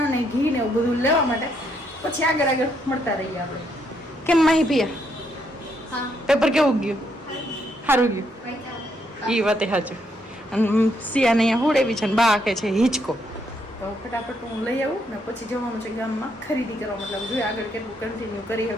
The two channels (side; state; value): both; normal; correlation 0.74